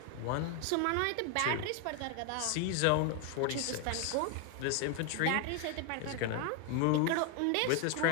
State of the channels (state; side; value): different; both; correlation 0.01